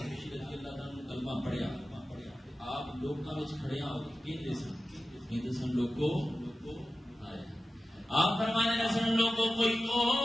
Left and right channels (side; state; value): both; normal; correlation 0.94